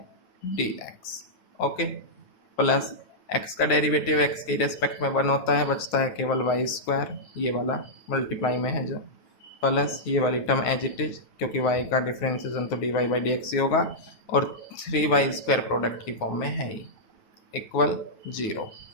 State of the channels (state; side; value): late; right; 9.4 ms